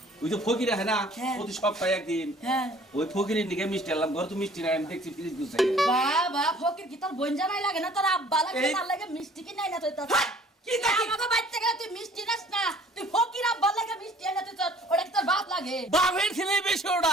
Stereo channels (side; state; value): both; normal; correlation 0.54